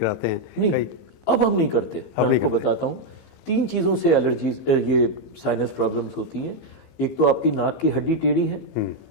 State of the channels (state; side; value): late; right; 15 ms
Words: हैं। नहीं, अब हम नहीं करते। मैं आपको बताता हूँ, 3 चीज़ों से एलर्जीज, ये साइनस प्रॉब्लम्स होती हैं। एक तो आपकी नाक की हड्डी टेढ़ी है,